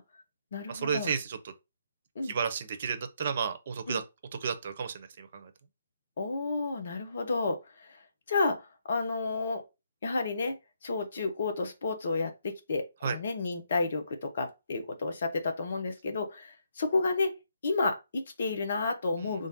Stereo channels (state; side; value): inverted; both; correlation -0.76